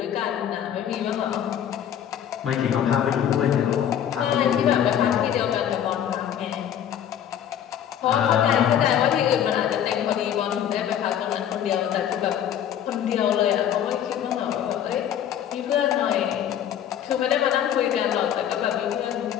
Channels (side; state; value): right; quieter; 9.9 dB